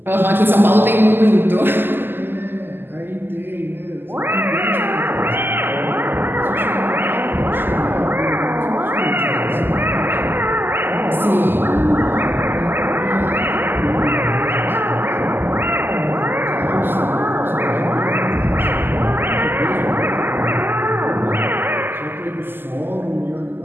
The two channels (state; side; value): late; left; 0.096 ms